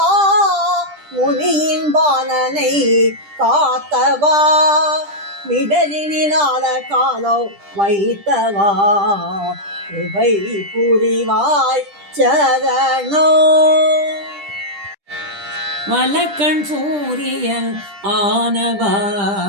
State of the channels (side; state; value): left; late; 10 ms